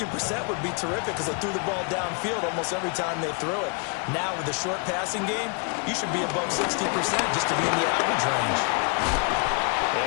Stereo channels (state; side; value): quieter; right; 36.3 dB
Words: would be terrific because they threw the ball downfield almost every time they threw it. Now with the short passing game, you should be above 60% just to be in the average range.